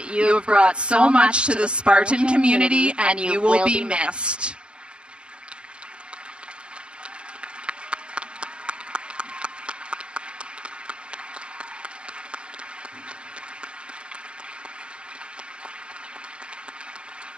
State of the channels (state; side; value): late; left; 0.055 ms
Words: you have brought so much to the Spartan community, and you will be missed.